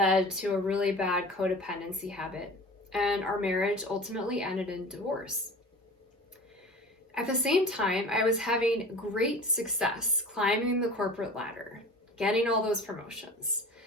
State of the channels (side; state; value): both; normal; correlation 0.39